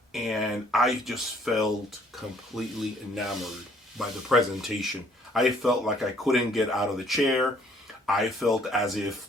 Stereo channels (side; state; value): both; normal; correlation 0.61